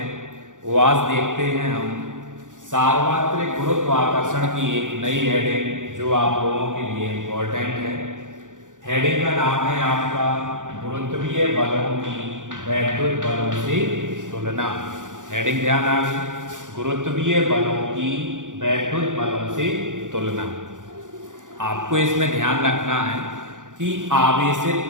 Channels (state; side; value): late; left; 0.87 ms